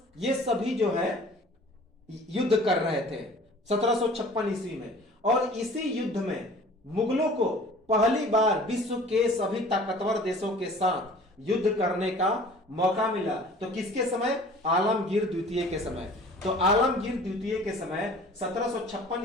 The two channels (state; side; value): normal; both; correlation 0.47